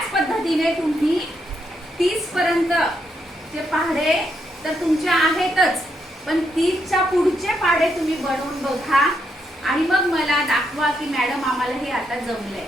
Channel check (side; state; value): both; normal; correlation 0.78